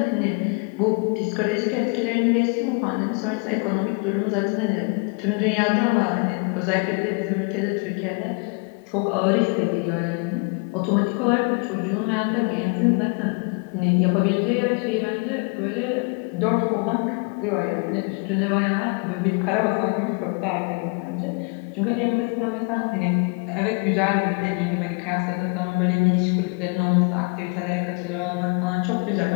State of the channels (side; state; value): right; quieter; 34.4 dB